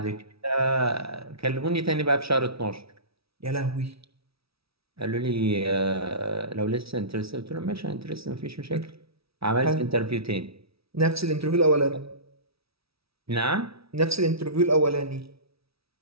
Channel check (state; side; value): late; left; 0.76 ms